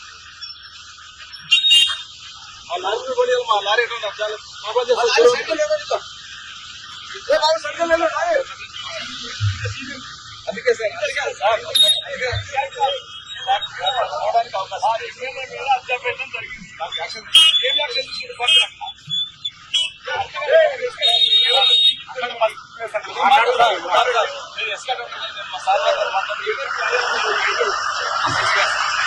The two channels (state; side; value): identical; both; correlation 1.00